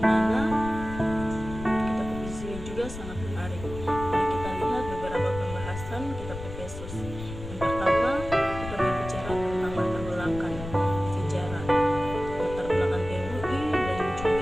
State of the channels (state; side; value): noise; left; rumble, 10 dB below the sound